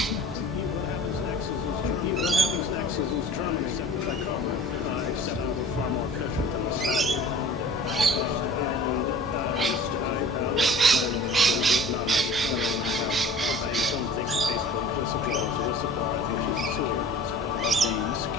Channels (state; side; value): normal; both; correlation 0.44